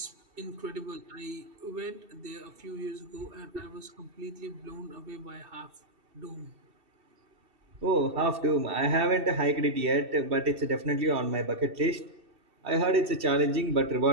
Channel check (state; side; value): late; left; 2.7 ms